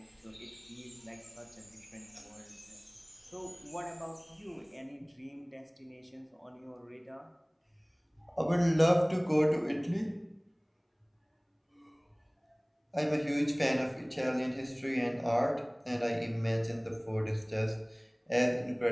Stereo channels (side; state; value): both; identical; correlation 1.00